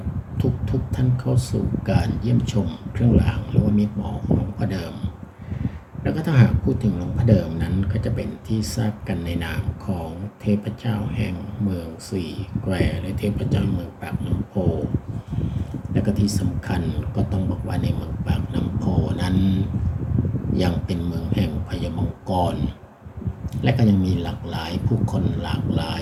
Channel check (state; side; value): identical; both; correlation 1.00